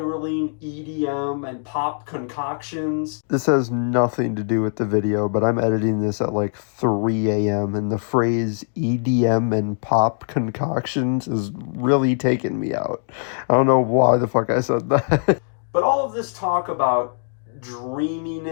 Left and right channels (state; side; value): silent; right; digital silence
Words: EDM and pop concoctions. This has nothing to do with the video, but I'm editing this at like 3 a.m. and the phrase EDM and pop concoctions is really taking me out. I don't know why the fuck I said that. But all of this talk about